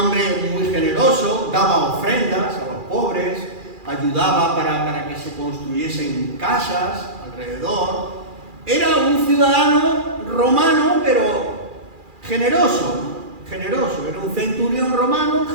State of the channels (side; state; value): left; late; 2.4 ms